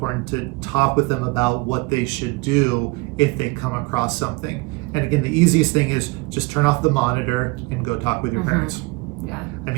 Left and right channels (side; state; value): left; quieter; 25.0 dB